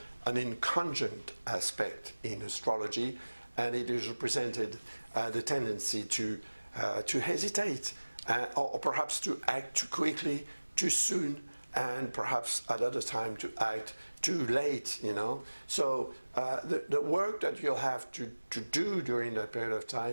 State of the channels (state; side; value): inverted; both; correlation -1.00